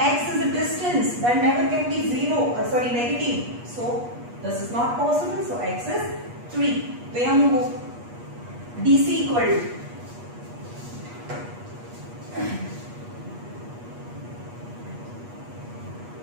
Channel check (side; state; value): left; late; 8.3 ms